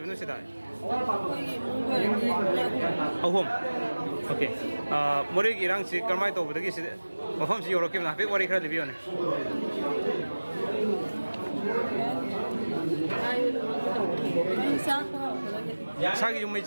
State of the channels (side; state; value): both; inverted; correlation -1.00